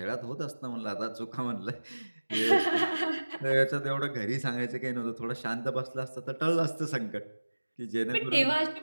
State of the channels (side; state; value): both; inverted; correlation -1.00